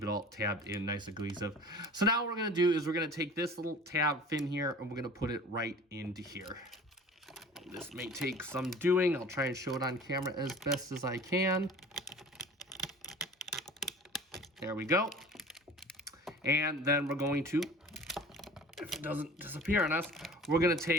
it all tabbed in nice and cohesive. So now what we're going to do is we're going to take this little tab fin here, and we're going to put it right into here. This may take some doing. I'll try and show it on camera as best as I can. There we go. And then we're going to, if it doesn't disappear on us, we're going to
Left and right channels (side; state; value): both; normal; correlation 0.42